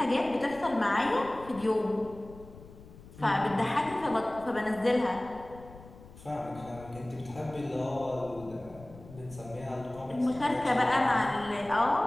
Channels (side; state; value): left; noise; rumble, 19 dB below the sound